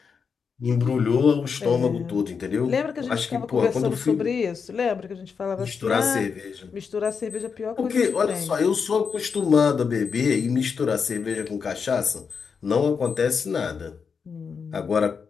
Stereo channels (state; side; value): quieter; right; 5.9 dB